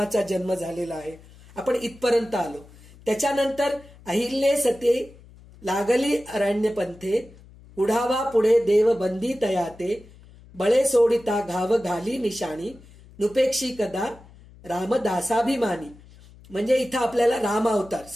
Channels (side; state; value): left; noise; hum, 23 dB below the sound